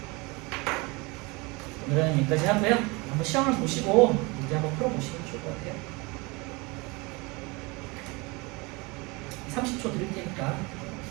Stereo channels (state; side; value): quieter; left; 26.3 dB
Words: 오늘은 여기까지 하고요. 한번 시험을 보시고 문제 한번 풀어보시면 좋을 것 같아요. 30초 드릴 테니까